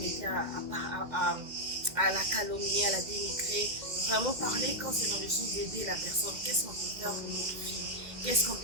mettez à la calomnier, à la dénigrer. Vraiment parler quand c'est dans le sens d'aider la personne. Qu'est-ce qu'on peut faire pour notre fille? Qu'est-ce qu'on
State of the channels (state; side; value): late; left; 1.9 ms